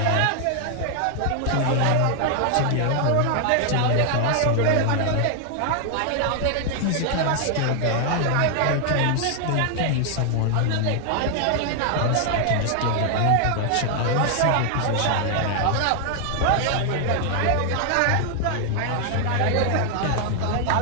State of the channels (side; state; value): both; different; correlation 0.00